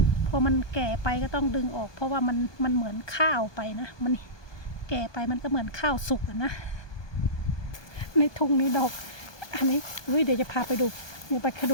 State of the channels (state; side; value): late; right; 1.2 ms